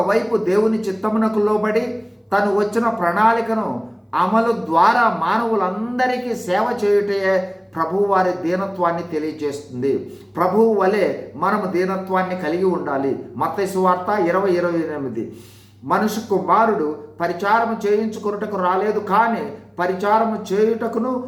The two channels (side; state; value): both; identical; correlation 1.00